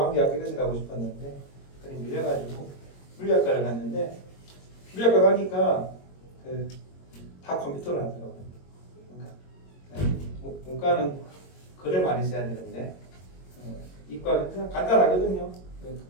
이런 데 가고 싶었는데 그래 밀려가지고 물리학과를 갔는데 물리학과 가니까 다 컴퓨터를 하더라고요. 그러니까 문과는 글을 많이 써야 되는데 이과는 그냥 간단하거든요.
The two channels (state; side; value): late; right; 22 ms